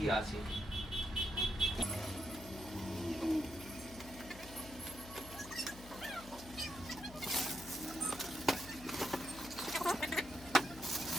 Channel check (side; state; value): left; noise; hum, 16 dB below the sound